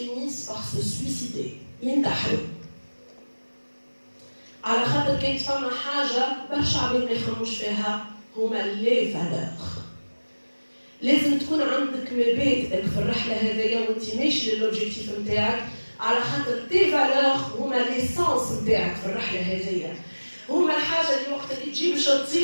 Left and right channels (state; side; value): inverted; both; correlation -1.00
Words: par se suicider ينتحروا على خاطر كانت فما حاجه برشا عباد ما يخمموش فيها هما لي فالور. لازم تكون عندك مبادئك في الرحله هذيا وانت ماشي للوبجيكتيف نتاعك على خاطر تي فالور هما ليسانس نتاعك في الرحله هذيا. هما الحاجه اللي وقت اللي تجي باش